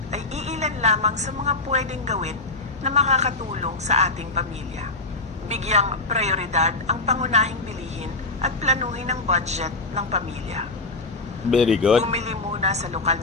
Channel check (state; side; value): quieter; right; 3.4 dB